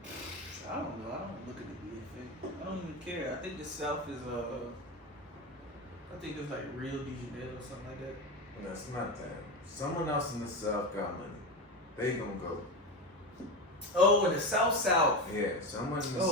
I don't know. I don't look at the BFA. I don't even care. I think the South is I think it's like Rio de Janeiro or something like that. That's not that. Someone else in the South got money. They gonna go. Oh, in the South. Yeah, someone in the Oh,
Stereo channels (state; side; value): normal; both; correlation 0.19